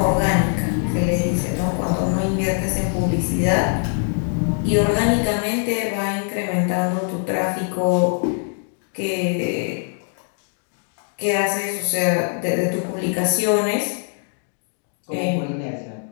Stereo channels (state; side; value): silent; right; 58 dB below the other